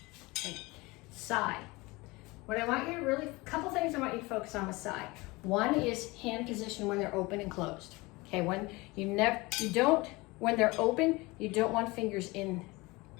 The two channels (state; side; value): quieter; right; 23.2 dB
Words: Okay. Side. What I want you to really, a couple things I want you to focus on with side. One is hand position when they're open and closed. Okay, when when they're open, you don't want fingers